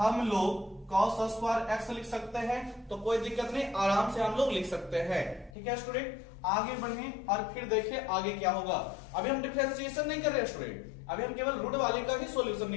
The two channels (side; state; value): right; drops out; at 5.6 s